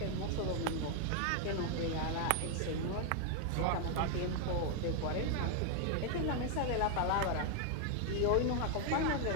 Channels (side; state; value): both; different; correlation 0.00